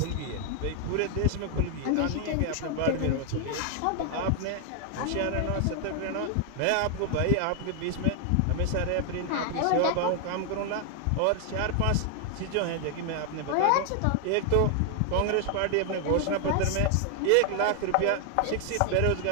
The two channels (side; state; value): both; different; correlation 0.00